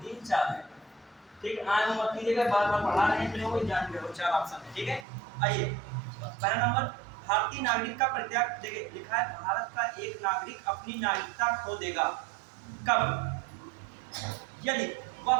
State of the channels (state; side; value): drops out; left; at 5.1 s